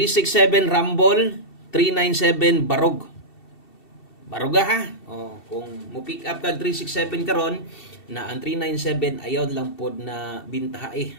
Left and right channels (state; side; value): late; right; 2.7 ms